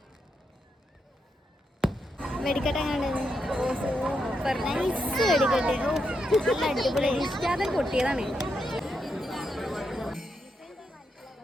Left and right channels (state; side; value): normal; both; correlation 0.83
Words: വെടിക്കെട്ട് എങ്ങനെയുണ്ട്? സൂപ്പർ നൈസ് വെടിക്കെട്ട്. നല്ല അടിപൊളി. ഇഷ്ടാതെ പൊട്ടിയതാണ്.